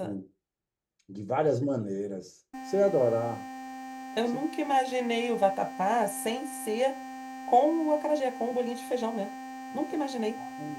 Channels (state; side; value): identical; both; correlation 1.00